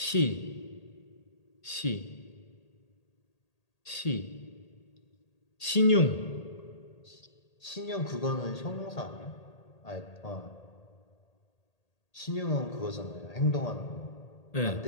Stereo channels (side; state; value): right; late; 1.8 ms